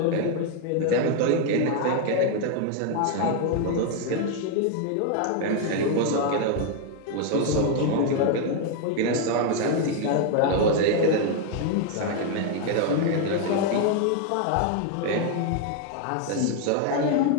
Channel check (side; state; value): both; different; correlation 0.01